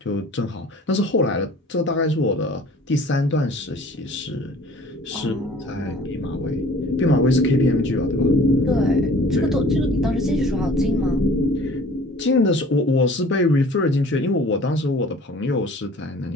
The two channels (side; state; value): both; normal; correlation 0.49